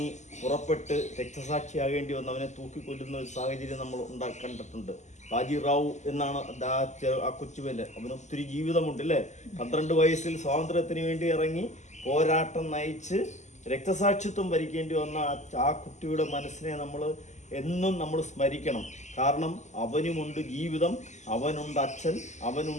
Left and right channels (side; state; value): right; late; 0.34 ms